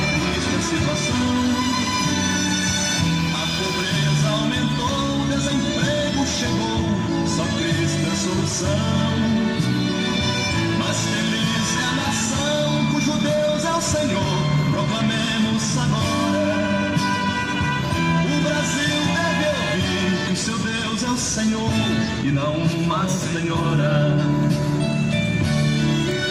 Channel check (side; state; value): both; identical; correlation 1.00